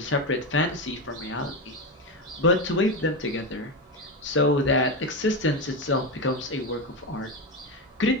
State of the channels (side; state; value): both; normal; correlation 0.14